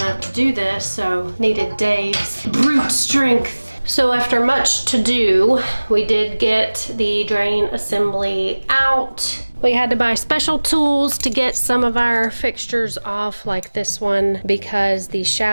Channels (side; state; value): both; inverted; correlation -1.00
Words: to do this, so needed Dave's brute strength. So after much to do, we did get the drain assembly out. We had to buy special tools to get some of our fixtures off, like this one, because the